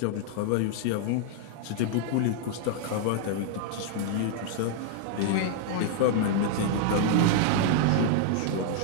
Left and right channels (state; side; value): different; both; correlation 0.00